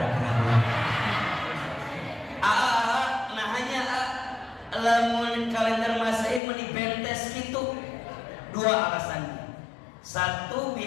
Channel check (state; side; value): drops out; right; at 6.4 s